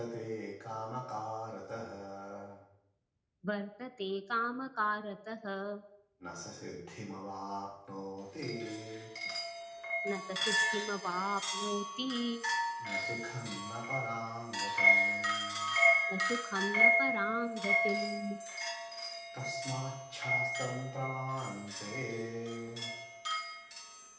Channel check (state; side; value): identical; both; correlation 1.00